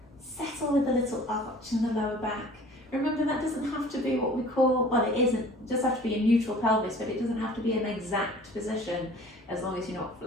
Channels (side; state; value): both; normal; correlation 0.48